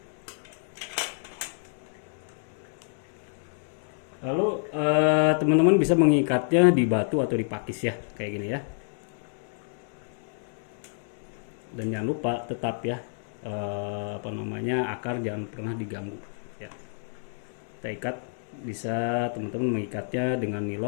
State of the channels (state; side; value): silent; right; 59 dB below the other